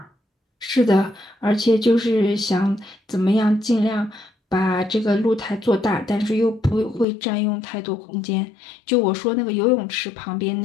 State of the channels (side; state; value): right; drops out; at 7.1 s